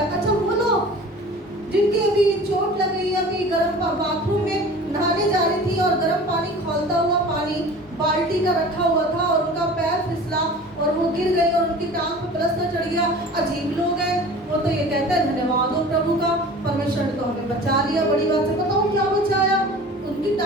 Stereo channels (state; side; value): normal; both; correlation 0.41